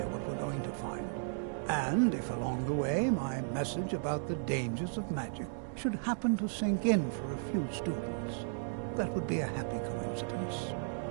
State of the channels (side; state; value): left; silent; digital silence